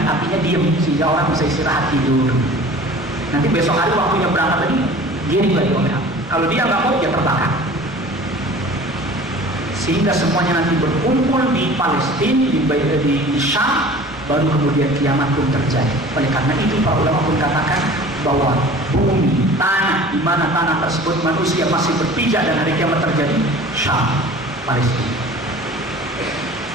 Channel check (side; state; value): both; normal; correlation 0.44